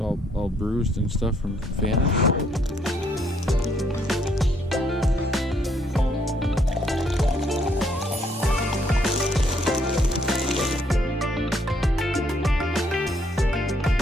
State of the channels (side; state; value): both; normal; correlation 0.69